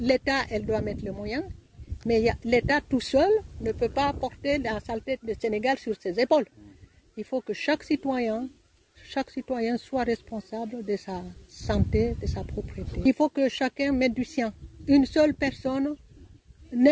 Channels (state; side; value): identical; both; correlation 1.00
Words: elle doit mettre les moyens. Mais l'État tout seul ne peut pas porter la saleté du Sénégal sur ses épaules. Il faut que chaque citoyen soit responsable de sa santé, de sa propriété. Il faut que chacun mette du sien. Une seule personne,